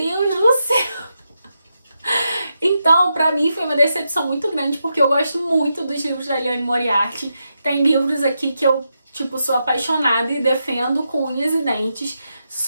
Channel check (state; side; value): inverted; both; correlation -0.85